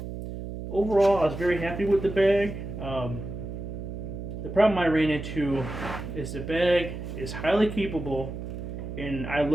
Overall, I was very happy with the bag. The problem I ran into is the bag is highly capable, and I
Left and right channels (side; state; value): right; noise; hum, 7 dB below the sound